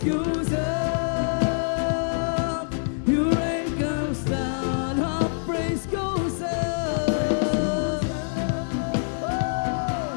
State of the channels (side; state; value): right; silent; digital silence